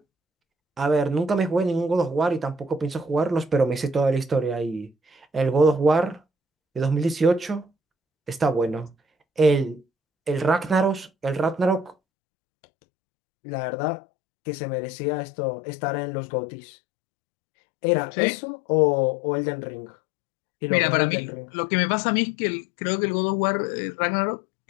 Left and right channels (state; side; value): drops out; right; at 12.0 s